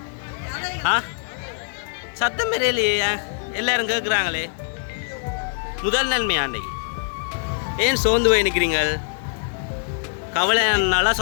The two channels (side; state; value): right; silent; 59 dB below the other